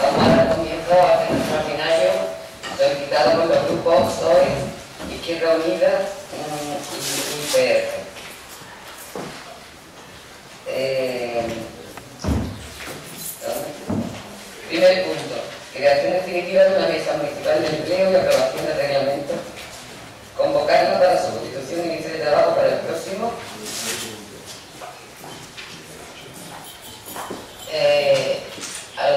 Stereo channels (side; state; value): both; identical; correlation 1.00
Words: vamos a dar comienzo a este extraordinario solicitado por los grupos PSOE, Izquierda Unida y PR. Primer punto, creación definitiva de una mesa municipal de empleo y aprobación del reglamento. Convocarla para su constitución y inicio de trabajo para el próximo.